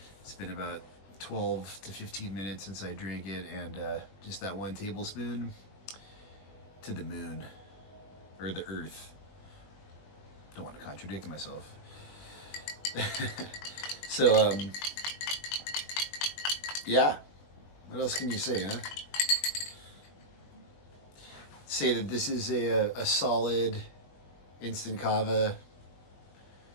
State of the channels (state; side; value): late; right; 21 ms